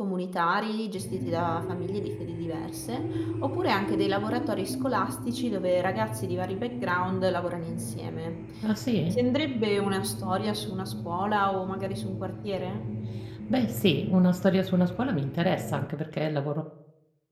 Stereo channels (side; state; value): both; identical; correlation 1.00